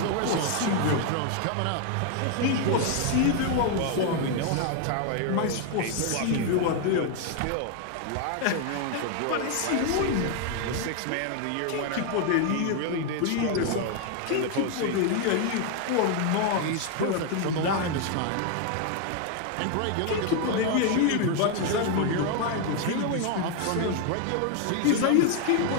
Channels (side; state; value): both; different; correlation 0.01